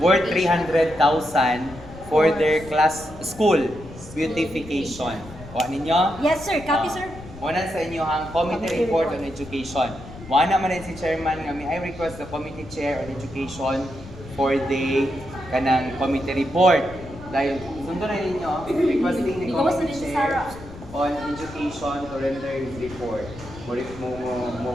300,000 for their school beautification. Kuha ninyo? Yes, sir. Copy, sir. Muna sa inyo ang Committee Report on Education. Wala naman din si Chairman nga I request the Committee Chair on Education for the kanang Committee Report. Dahil sundo na ninyo, requesting the Committee Chair on Education to render his report.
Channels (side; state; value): left; noise; rumble, 16 dB below the sound